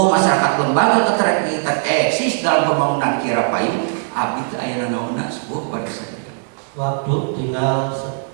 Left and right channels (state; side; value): silent; left; digital silence